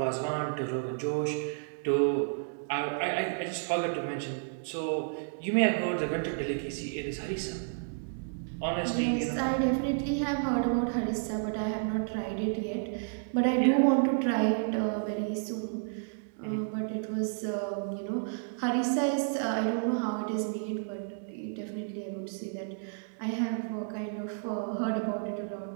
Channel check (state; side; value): silent; left; digital silence